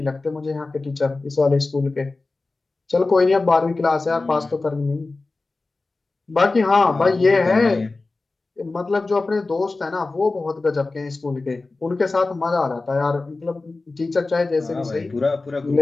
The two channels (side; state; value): right; quieter; 3.5 dB